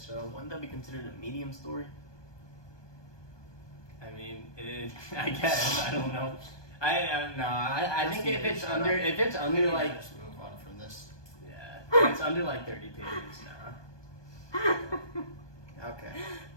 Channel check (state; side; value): late; right; 1.2 ms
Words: Wouldn't that be considered a medium story? I mean, I guess I don't know. I don't know. I think if it's under like just move on from this. yeah, if it's under like 30 pages now. Okay.